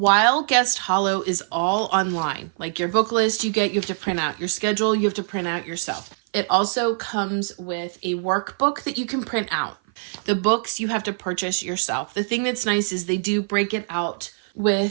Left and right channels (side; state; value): left; silent; 55 dB below the other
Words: Guest Hollow is all online, like your book list you have to print out, your schedule you have to print out yourself. It also comes with a workbook that you can print out. The books you have to purchase yourself. The thing that's nice is they do break it out